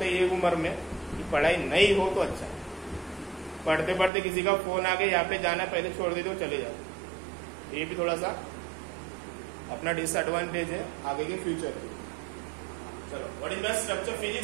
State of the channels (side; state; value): left; drops out; at 4.1 s